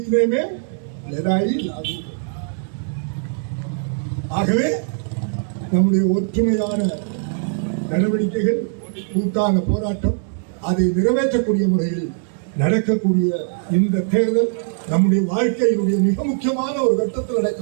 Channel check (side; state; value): left; silent; 65 dB below the other